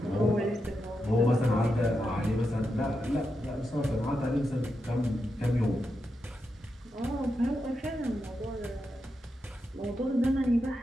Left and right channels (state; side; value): normal; both; correlation 0.87